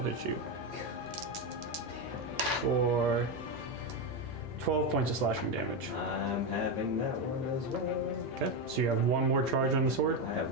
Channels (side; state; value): both; normal; correlation 0.10